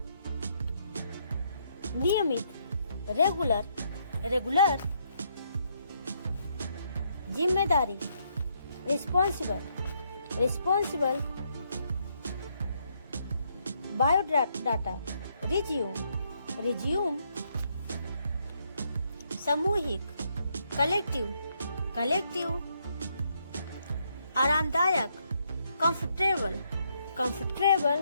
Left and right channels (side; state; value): both; inverted; correlation -0.74